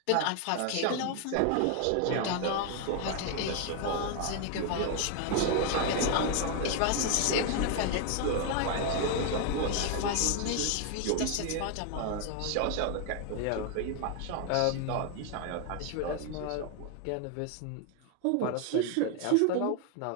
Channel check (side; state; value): both; different; correlation 0.00